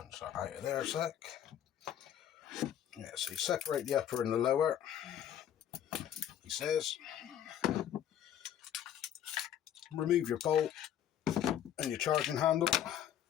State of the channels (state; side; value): quieter; right; 10.3 dB